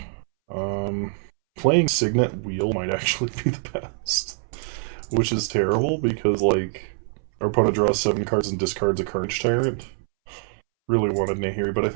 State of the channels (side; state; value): left; silent; 62 dB below the other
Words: Playing Signet Wheel might actually be the best. Which is terrible, because, like, our opponent draws 7 cards and discards a Carnage Tyrant. Really wanted Nahiri, but I